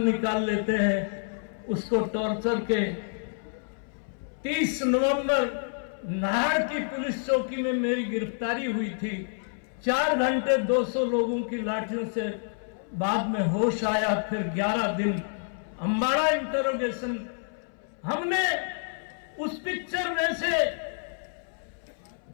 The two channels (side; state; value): right; silent; 58 dB below the other